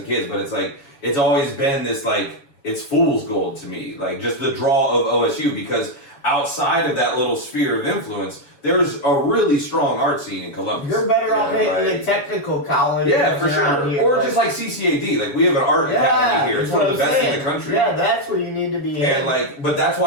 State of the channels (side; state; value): right; late; 7.2 ms